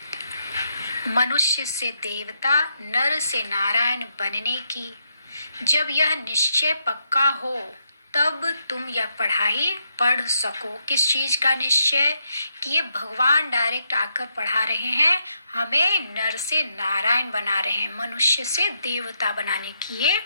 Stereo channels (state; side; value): inverted; both; correlation -0.79